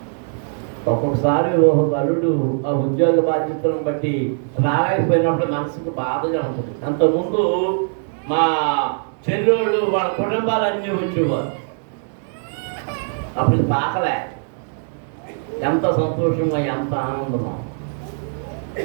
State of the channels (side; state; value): left; silent; 59 dB below the other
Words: ఒక్కొక్కసారి ఒక బలుడు ఆ ఉద్యోగ బాధ్యతలను బట్టి రాలేకపోయినప్పుడు మనసుకు బాధగా ఉంటుంది. అంతకుముందు మా చెల్లెళ్ళు వాళ్ళ కుటుంబాలన్నీ వచ్చేవారు. అప్పుడు పాకలే. ఎంత సంతోషమో, ఎంత ఆనందమో.